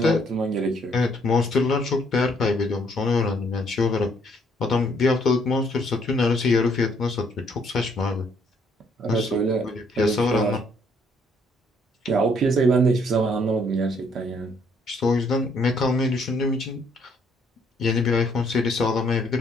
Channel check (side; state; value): both; normal; correlation 0.67